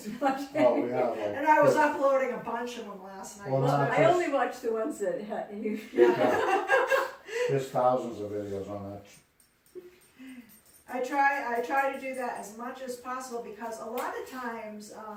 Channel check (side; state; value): both; identical; correlation 1.00